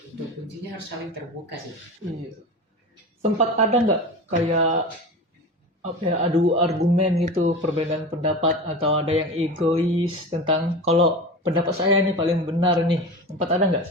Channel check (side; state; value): both; normal; correlation 0.29